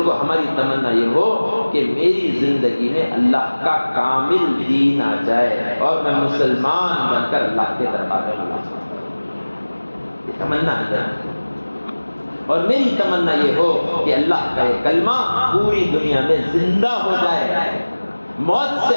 کو ہماری تمنا یہ ہو کہ میری زندگی میں اللہ کا کامل دین آ جائے اور میں مسلمان بن کر اللہ کے دربار میں اللہ، یہ تمنا اندر ہے۔ اور میری تمنا یہ ہو کہ اللہ کا یہ کلمہ پوری دنیا میں زندہ ہو جائے، موت سے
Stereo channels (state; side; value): inverted; both; correlation -1.00